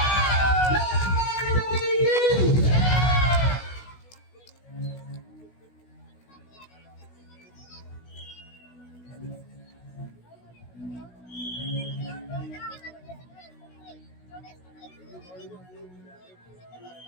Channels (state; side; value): late; right; 16 ms